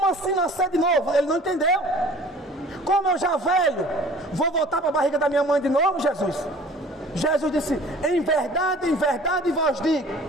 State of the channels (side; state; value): both; normal; correlation 0.48